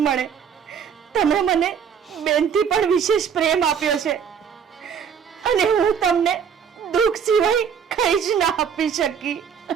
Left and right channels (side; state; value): left; quieter; 7.4 dB